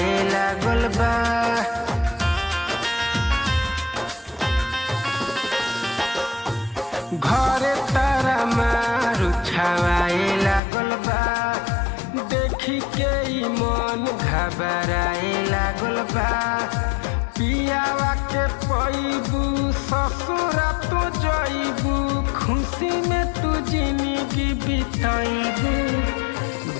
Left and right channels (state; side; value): drops out; right; at 10.6 s